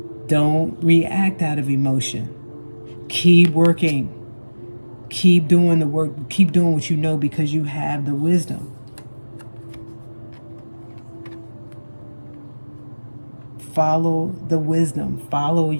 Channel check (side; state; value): both; inverted; correlation -1.00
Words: Don't react out of emotion. Keep working. Keep doing the work. Keep doing what you know, because you have the wisdom. Follow the wisdom. Follow